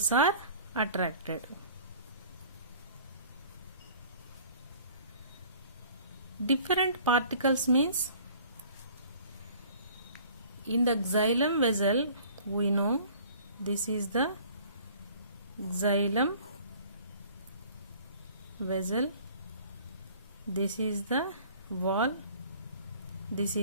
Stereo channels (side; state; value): both; inverted; correlation -0.50